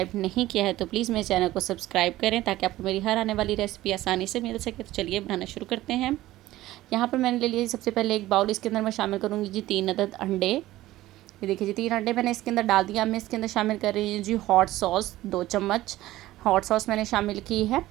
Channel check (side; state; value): left; quieter; 16.0 dB